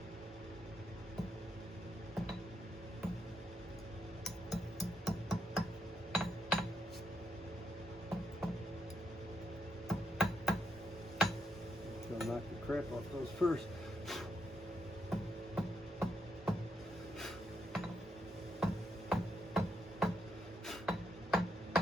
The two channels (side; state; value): both; normal; correlation 0.79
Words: So knock the crap off those first.